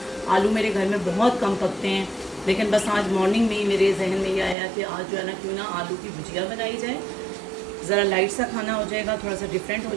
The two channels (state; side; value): drops out; left; at 4.5 s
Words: आलू मेरे घर में बहुत कम पकते हैं, लेकिन बस आज मॉर्निंग में ही मेरे जहन में ये आया कि आज जो है ना क्यों ना आलू की भुजिया बनाई जाए। ज़रा लाइट सा खाना हो जाएगा, थोड़ा सा डिफरेंट हो